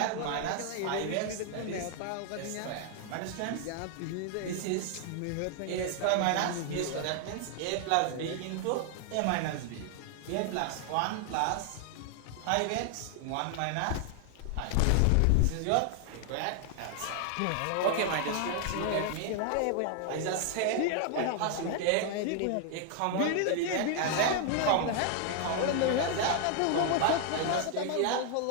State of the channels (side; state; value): both; different; correlation 0.00